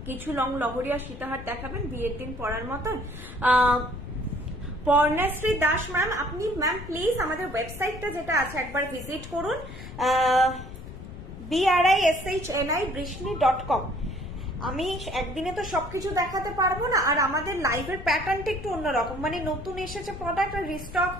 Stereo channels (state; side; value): noise; left; rumble, 12 dB below the sound